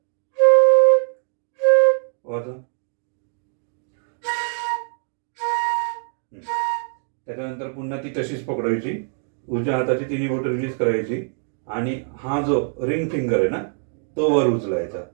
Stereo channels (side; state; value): left; silent; 55 dB below the other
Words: वाजवा. त्याच्यानंतर पुन्हा ती तशीच पकडायची, उजव्या हाताची 3 बोटं रिलीज करायची आणि हा जो रिंग फिंगर आहे ना, तो वर उचलायचा.